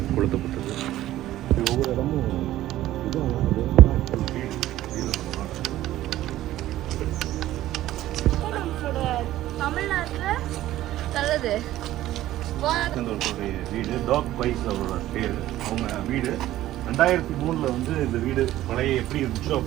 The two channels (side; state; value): left; quieter; 14.4 dB